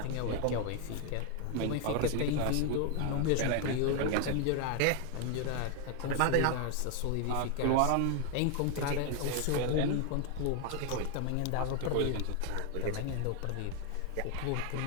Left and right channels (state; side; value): different; both; correlation 0.00